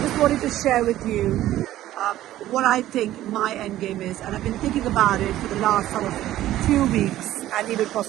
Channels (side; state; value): left; quieter; 14.0 dB